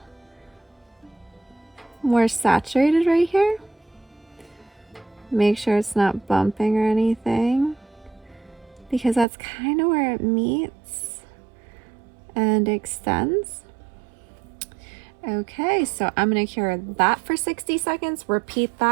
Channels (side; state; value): left; drops out; at 9.2 s